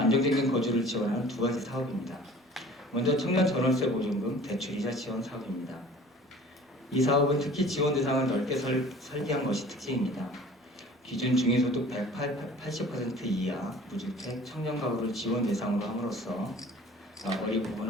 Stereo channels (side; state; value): both; normal; correlation 0.47